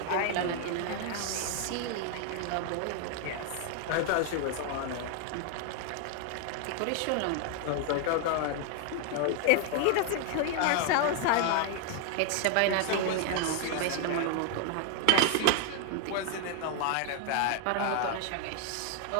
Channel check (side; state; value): both; different; correlation 0.00